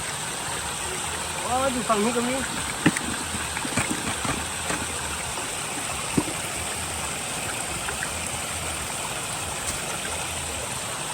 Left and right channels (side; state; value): both; identical; correlation 1.00